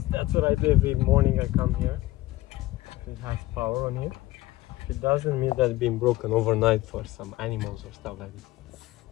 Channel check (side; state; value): right; quieter; 17.6 dB